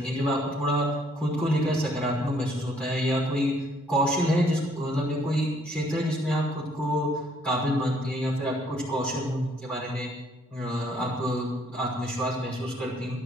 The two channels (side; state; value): both; normal; correlation 0.65